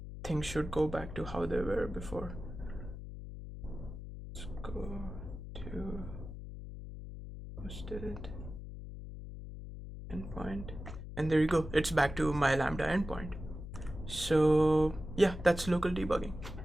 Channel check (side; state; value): left; noise; hum, 10 dB below the sound